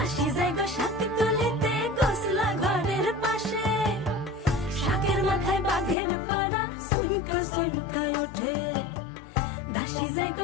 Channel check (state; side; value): drops out; right; at 6.0 s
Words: দাসী যায় গো শাক তুলিতে গোসলা ঘরের পাশে, শাকের মাথায় বাঘের পাড়া সুনকা সুনকা ওঠে। দাসী যায় গো